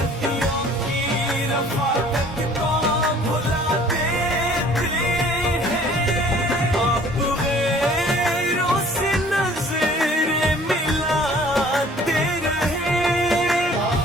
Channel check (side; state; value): both; normal; correlation 0.53